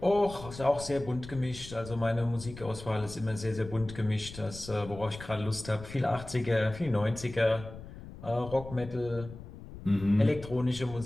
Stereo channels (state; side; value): noise; left; rumble, 14 dB below the sound